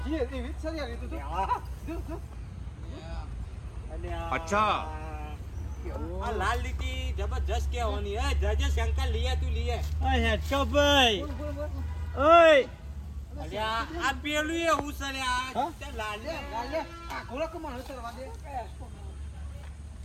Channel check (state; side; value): identical; both; correlation 1.00